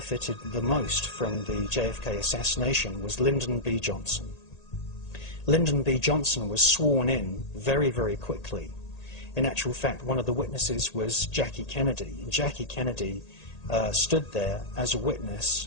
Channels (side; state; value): right; late; 1.8 ms